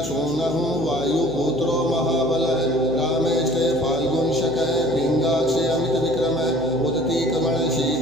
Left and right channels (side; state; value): right; noise; hum, 17 dB below the sound